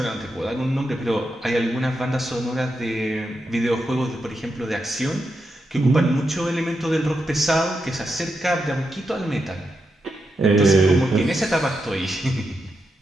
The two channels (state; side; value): normal; both; correlation 0.86